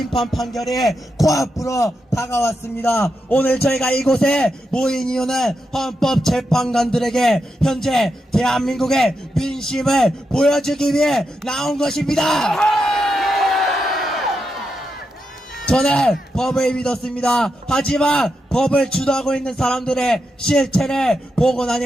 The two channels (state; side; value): normal; both; correlation 0.86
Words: 판결이 코앞으로 다가왔습니다. 오늘 저희가 이곳에 모인 이유는 헌법 재판관들에게 현재 대한민국의 민심을 보여주기 위해 나온 것입니다. 저는 법을 믿었습니다. 하지만 법을 주도하고 있는 사람들의 실체를 보고